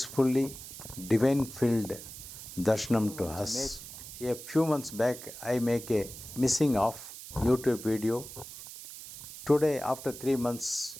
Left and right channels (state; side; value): noise; right; hiss, 13 dB below the sound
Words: divine filled darshanam to us. A few months back, I make a missing of YouTube video. Today, after 3 months,